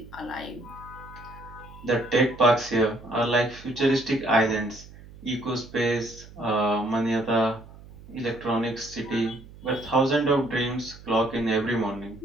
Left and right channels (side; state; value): right; noise; hum, 19 dB below the sound